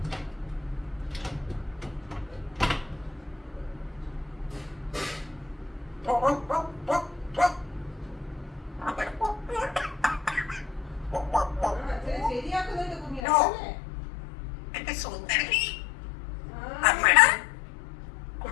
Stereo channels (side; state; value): right; drops out; at 13.2 s